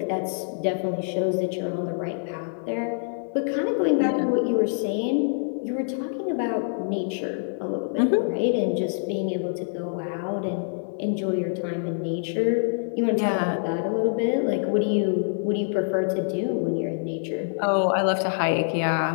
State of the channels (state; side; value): silent; right; digital silence